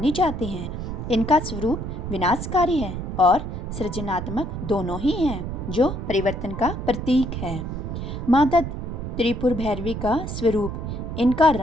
जाती हैं। इनका स्वरूप विनाशकारी है और सृजनात्मक दोनों ही हैं, जो परिवर्तन का प्रतीक है। माता त्रिपुर भैरवी का स्वरूप, इनका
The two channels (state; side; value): noise; right; rumble, 5 dB below the sound